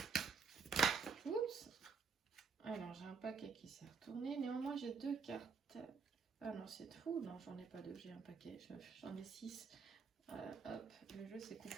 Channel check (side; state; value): left; quieter; 5.2 dB